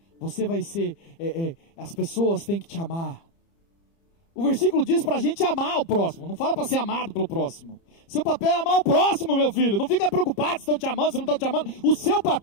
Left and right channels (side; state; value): right; late; 30 ms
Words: você vai ser, as pessoas têm que te amar. O versículo diz para a gente amar o próximo, não fala para ser amado pelo próximo. Seu papel é amar o próximo, meu filho. Não fica preocupado se estão te amando, se não estão te amando. O seu